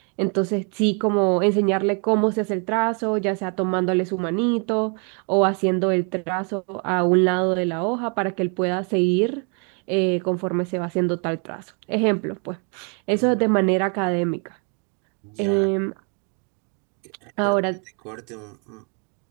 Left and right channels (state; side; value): quieter; left; 38.6 dB